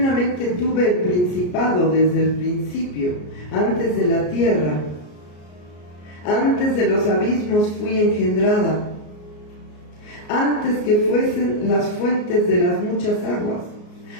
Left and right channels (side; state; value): right; late; 33 ms